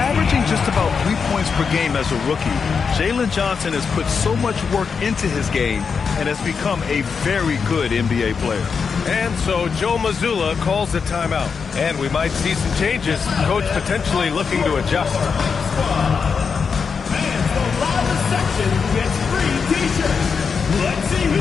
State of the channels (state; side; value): quieter; right; 5.7 dB